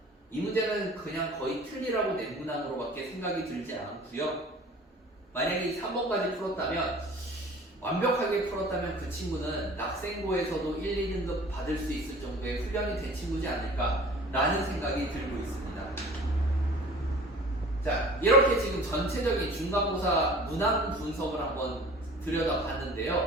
이 문제는 그냥 거의 틀리라고 낸 문항으로밖에 생각이 들지 않고요. 만약에 3번까지 풀었다면, 완벽하게 풀었다면 그 친구는 낙생고에서도 1, 2등급 받을 수 있을 정도의 훈련이 된 친구지 않을까라는 생각이 들고 있습니다. 자, 이렇게 지금 전체적인 중간고사 문항 분석을 한번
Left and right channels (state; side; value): normal; both; correlation 0.46